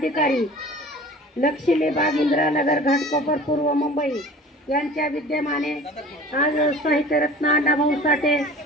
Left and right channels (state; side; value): normal; both; correlation 0.43